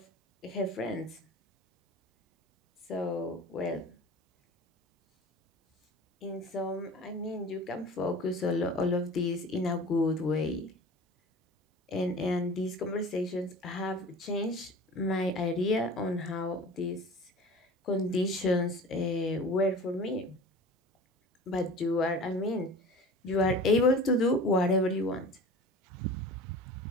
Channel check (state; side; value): normal; both; correlation 0.39